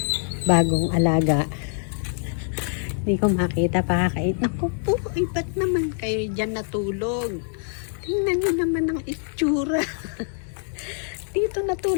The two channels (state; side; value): silent; right; digital silence